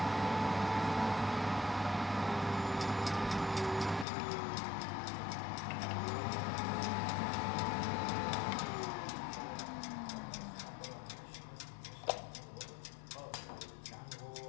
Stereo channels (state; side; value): drops out; right; at 4.0 s